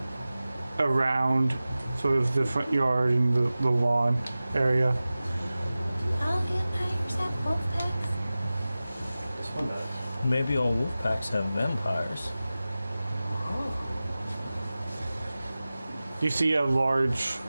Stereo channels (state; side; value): inverted; both; correlation -0.96